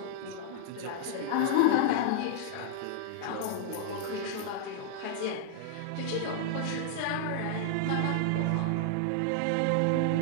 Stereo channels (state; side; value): different; both; correlation -0.01